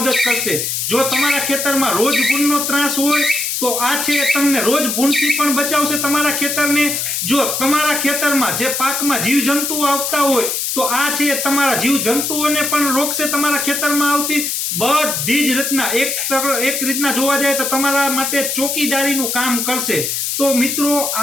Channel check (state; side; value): noise; left; hiss, 1 dB below the sound